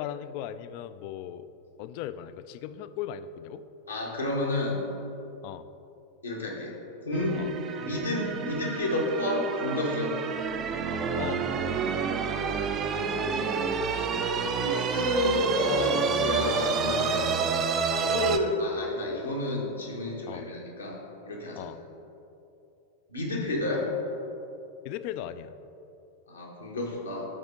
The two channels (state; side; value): normal; both; correlation 0.08